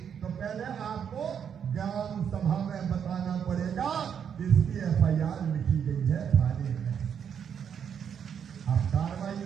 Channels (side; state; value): left; quieter; 7.9 dB